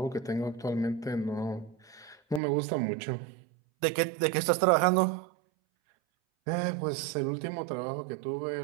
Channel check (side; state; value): left; drops out; at 2.4 s